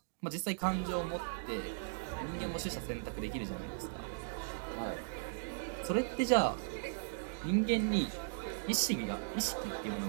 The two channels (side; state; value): left; silent; digital silence